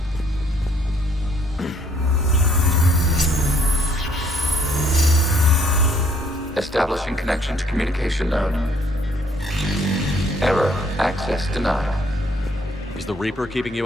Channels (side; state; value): both; normal; correlation 0.65